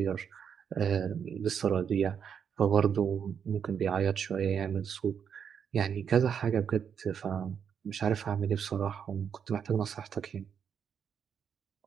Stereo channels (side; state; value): left; quieter; 7.6 dB